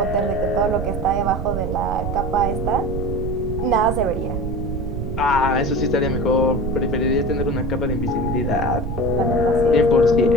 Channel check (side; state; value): right; noise; rumble, 4 dB below the sound